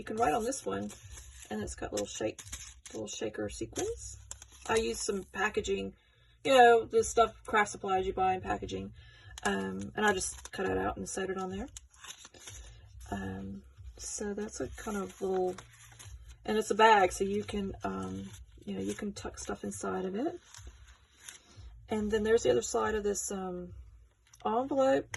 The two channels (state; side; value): identical; both; correlation 1.00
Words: can write on this one, and it's got little shaker sequins. I used some packaging, the stuff, craft supplies you buy in packaging, and I just cut it out and sewed it on there. So that's a kind of little, and it's a bag, so you can, you can tuck stuff inside of it. And then there's the other side of this